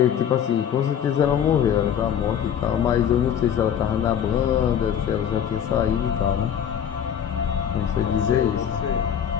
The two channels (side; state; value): right; quieter; 8.9 dB